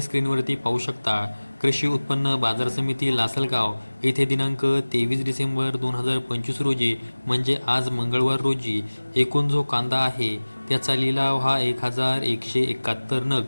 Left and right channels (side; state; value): both; inverted; correlation -1.00